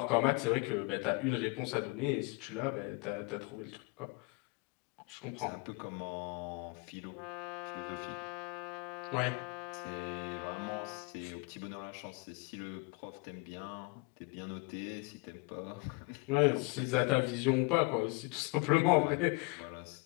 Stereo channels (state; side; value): quieter; right; 28.1 dB